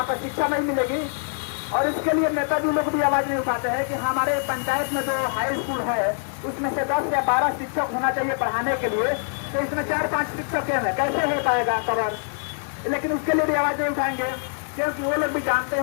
पर शिक्षा नहीं मिलेगी। और इसके लिए नेताजी लोग भी आवाज नहीं उठाते हैं कि हमारे पंचायत में जो हाई स्कूल है उसमें से 10 या 12 शिक्षक होना चाहिए पढ़ाने के लिए, तो इसमें 4-5 शिक्षक हैं, कैसे हो पाएगा कवर? लेकिन उसके लिए भी आवाज नहीं उठाएंगे, क्योंकि वो लोग भी जानते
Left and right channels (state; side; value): silent; right; digital silence